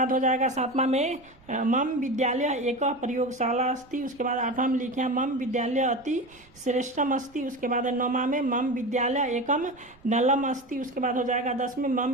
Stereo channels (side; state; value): right; noise; rumble, 28 dB below the sound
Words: हो जाएगा सातवां में मम विद्यालय एक प्रयोगशाला अस्ति। उसके बाद आठवां में लिखे हैं मम विद्यालय अति श्रेष्ठम अस्ति। उसके बाद नौवां में मम विद्यालय एकम नलम अस्ति। उसके बाद हो जाएगा 10 में मम